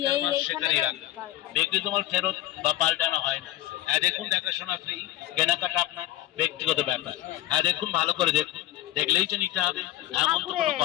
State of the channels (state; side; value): quieter; right; 14.9 dB